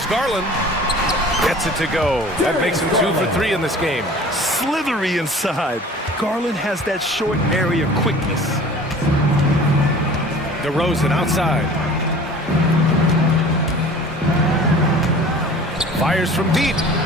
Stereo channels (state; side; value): normal; both; correlation 0.44